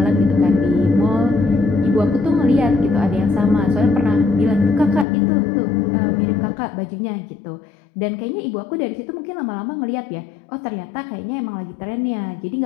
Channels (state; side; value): drops out; right; at 5.1 s